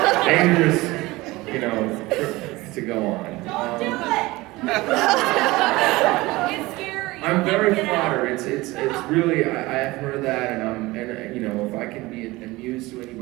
you know, trip to go on. Don't do it! It's scary. I'm very flattered. It's really, I have heard that, and you know, if I can be amused to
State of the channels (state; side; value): quieter; left; 20.6 dB